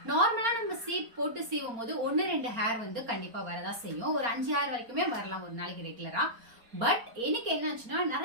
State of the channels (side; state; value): left; late; 4.3 ms